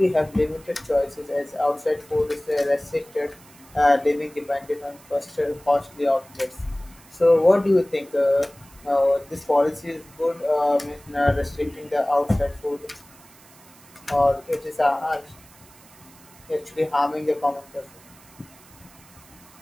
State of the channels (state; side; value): noise; right; hiss, 24 dB below the sound